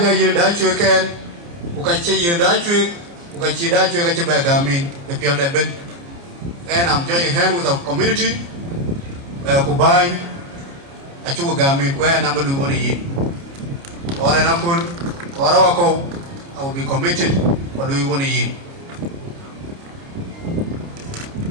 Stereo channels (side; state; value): left; late; 29 ms